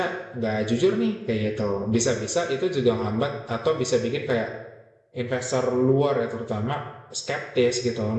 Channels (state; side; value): identical; both; correlation 1.00